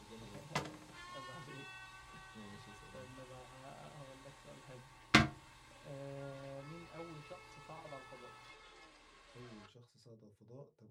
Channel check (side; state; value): both; identical; correlation 1.00